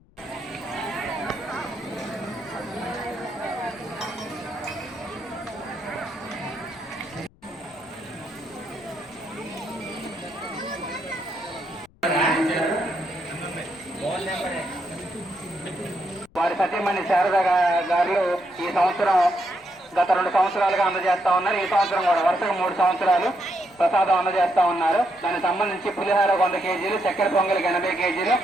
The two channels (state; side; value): noise; left; rumble, 30 dB below the sound